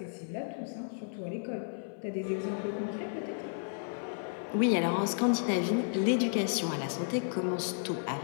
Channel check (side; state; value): right; silent; 56 dB below the other